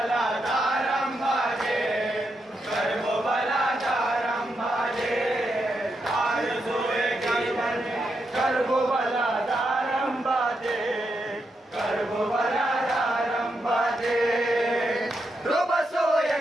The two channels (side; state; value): both; normal; correlation 0.83